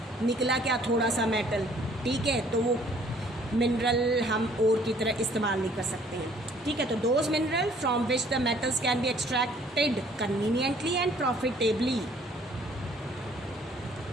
निकला क्या, थोड़ा सा मेटल, ठीक है, तो वो मिनरल हम और की तरह इस्तेमाल नहीं कर सकते हैं, ठीक है। तो those mineral from which the metals can be extracted conveniently and profitably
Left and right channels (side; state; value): both; normal; correlation 0.59